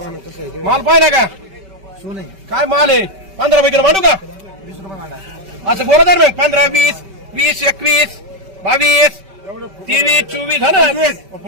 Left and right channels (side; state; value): left; late; 5.2 ms